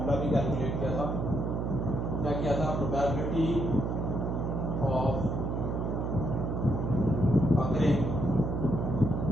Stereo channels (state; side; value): noise; right; hum, 1 dB below the sound